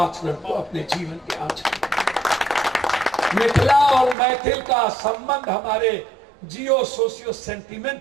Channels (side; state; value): left; drops out; at 4.2 s